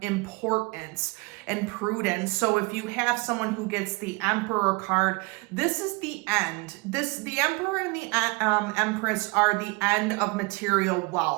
importance and prudence. So if you have someone who gets the Emperor card, this is the end. The Emperor and the Empress are the end of material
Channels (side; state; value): left; quieter; 26.6 dB